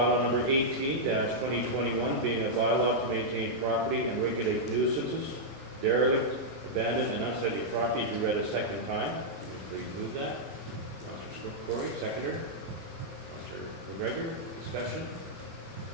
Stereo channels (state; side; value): normal; both; correlation -0.07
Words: number 18-2021, being a bylaw to maintain property and regulate nuisances, derelict, abandoned, and unsightly property, be read a second time. Please move that. Councilor Corey, seconder. Councilor McGregor, discussion.